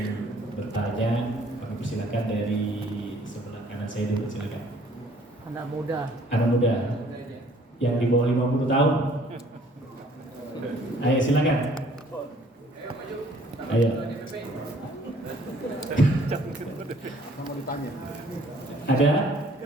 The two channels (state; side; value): normal; both; correlation 0.58